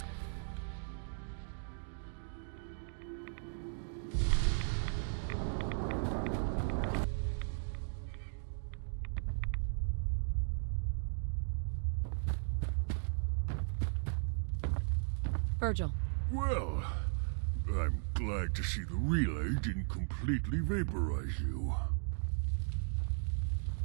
Virgil. Well, I'm glad to see the relay didn't completely vaporize you.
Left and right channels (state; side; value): silent; left; digital silence